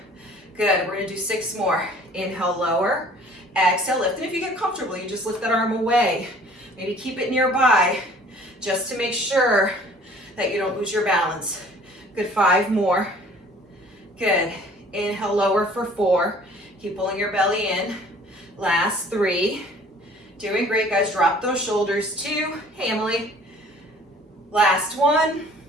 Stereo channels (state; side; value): normal; both; correlation 0.52